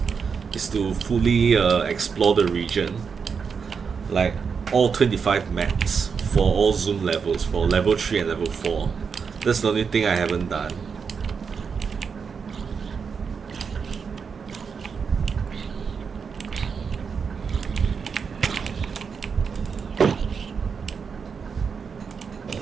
is to fully explore the region. Like all 25 maps for all zoom levels, for level 3 and level 4. That's the only thing I haven't done.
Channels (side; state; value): left; quieter; 5.9 dB